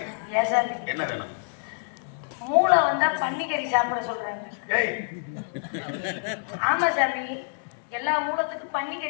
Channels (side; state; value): right; silent; digital silence